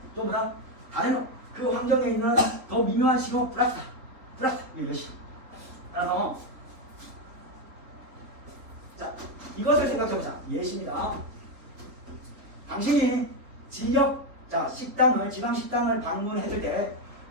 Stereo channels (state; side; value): late; left; 3.7 ms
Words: 또 뭐다? 다른 그 환경에 있는 더 미묘한 신호 플러스 이것이. 따라서 자, 이것을 생각해보자. 예시입니다. 당신이 지역 지방 식당을 방문했을 때